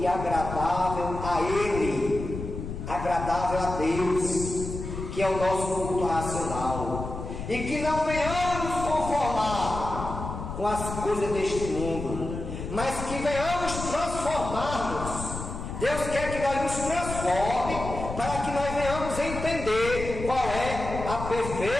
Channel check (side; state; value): left; noise; rumble, 7 dB below the sound